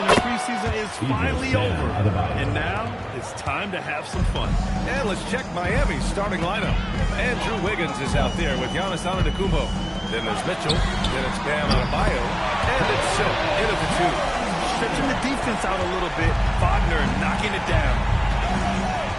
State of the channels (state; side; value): identical; both; correlation 1.00